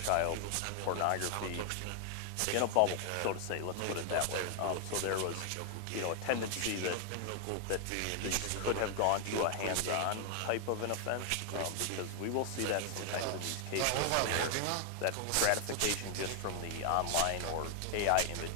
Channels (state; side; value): different; both; correlation 0.00